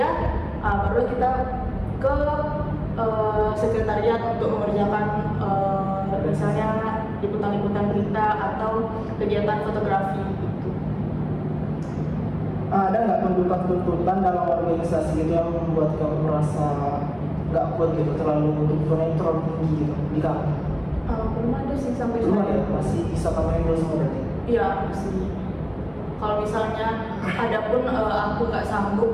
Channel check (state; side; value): identical; both; correlation 1.00